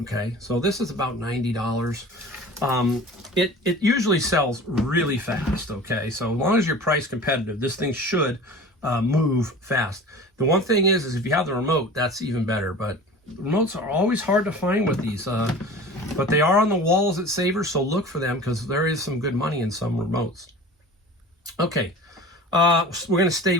okay? So this is about $90. It usually sells really fast, okay? So as long as you're price competitive, this thing should move fast. The one thing is if you have the remote, that's even better. But remotes are always hard to find with these. But they are on the walls at Savers, so look for them because there is some good money in some remotes. Okay, we're going to stay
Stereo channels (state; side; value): normal; both; correlation 0.39